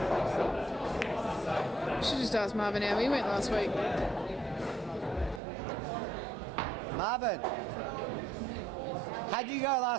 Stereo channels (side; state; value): left; drops out; at 5.4 s